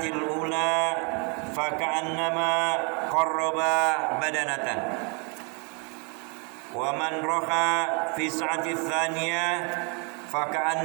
ula faka'annama qarraba badanatan, wa man roha fi sa'atil thaniyah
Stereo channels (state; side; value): quieter; left; 34.8 dB